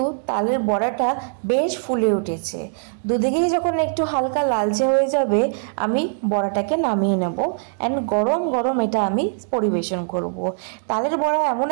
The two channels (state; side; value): silent; left; digital silence